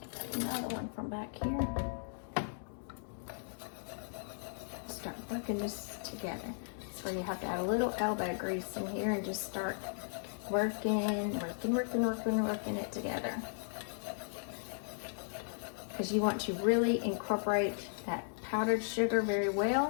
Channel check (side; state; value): right; silent; digital silence